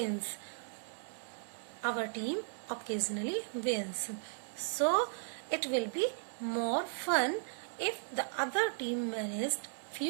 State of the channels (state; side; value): silent; left; 54 dB below the other